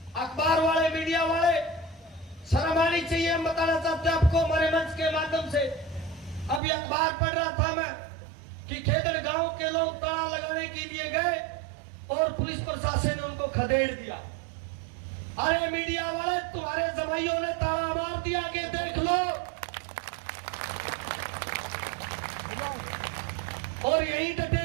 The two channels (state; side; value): drops out; left; at 6.6 s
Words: अखबार वाले, मीडिया वाले, शर्म आनी चाहिए। हम बताना चाहते हैं आपको हमारे मंच के माध्यम से, अभी अखबार पढ़ रहा था मैं कि खेदड़ गांव के लोग ताला लगाने के लिए गए और पुलिस प्रशासन ने उनको खदेड़ दिया। अरे मीडिया वाले, तुम्हारे जमाइयों ने ताला मार दिया कि देख लो। और यही डटे